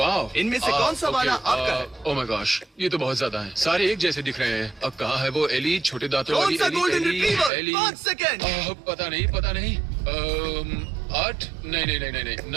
इनमें से कौन सा वाला आपका है? ओह माय गॉश, ये तो बहुत ज्यादा है। सारे एक जैसे दिख रहे हैं। अब कहाँ है वो एली, छोटे दांतों कौन वाली सा Ellie? Golden retriever? Ellie. 5 second. पता नहीं, पता नहीं। 8, नहीं,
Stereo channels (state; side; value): drops out; left; at 7.5 s